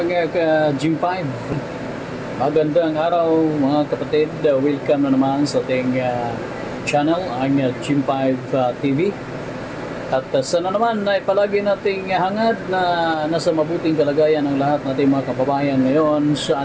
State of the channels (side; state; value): both; identical; correlation 1.00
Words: ka-Gym 5? Magandang araw mga kapatid. Welcome na naman sa ating channel, ang Gym 5 TV. At sana naman ay palagi nating hangad na nasa mabuting kalagayan ang lahat nating mga kababayan ngayon